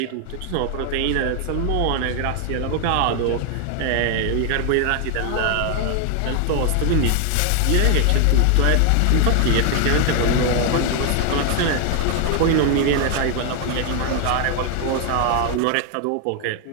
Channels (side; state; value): both; different; correlation 0.00